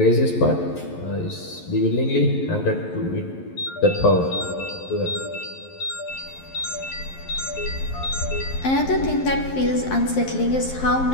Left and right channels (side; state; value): right; late; 11 ms